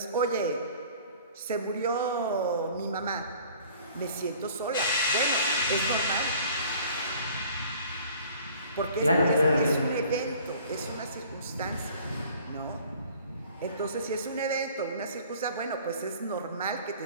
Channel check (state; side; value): inverted; both; correlation -0.50